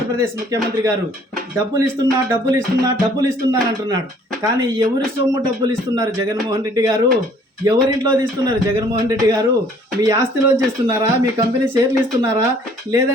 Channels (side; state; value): both; normal; correlation 0.58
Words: ముఖ్యమంత్రి గారు డబ్బులు ఇస్తున్నా అంటున్నాడు. కానీ ఎవరి సొమ్ము డబ్బులు ఇస్తున్నారు జగన్మోహన్ రెడ్డి గారు? ఎవరింట్లో తీస్తున్నారు జగన్మోహన్ రెడ్డి గారు? మీ ఆస్తిలోంచి ఇస్తున్నారా? మీ కంపెనీ షేర్లు ఇస్తున్నారా?